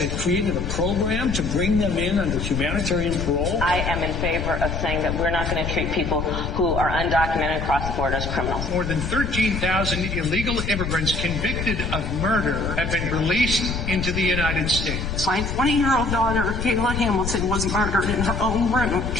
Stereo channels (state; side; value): noise; left; rumble, 4 dB below the sound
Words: created a program to bring them in under humanitarian parole. I am in favor of saying that we're not going to treat people who are undocumented across the border as criminals. More than 13,000 illegal immigrants convicted of murder have been released into the United States. My 20-year-old daughter, Kayla Hamilton, was murdered in her own room.